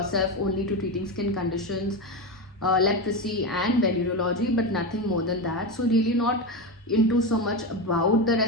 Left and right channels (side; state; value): both; normal; correlation 0.16